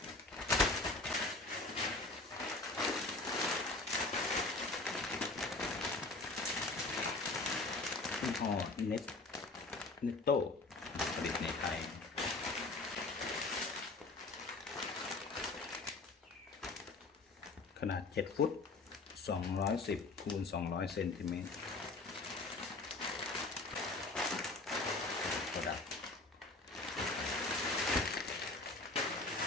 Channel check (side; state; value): right; quieter; 3.3 dB